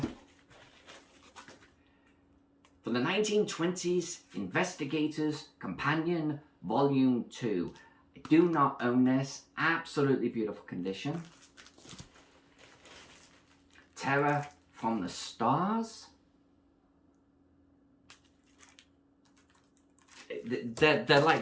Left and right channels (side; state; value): both; identical; correlation 1.00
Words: For the 1920s, Investigators Companion Volume 2. I do not own this. Absolutely beautiful condition. Terror from the Stars.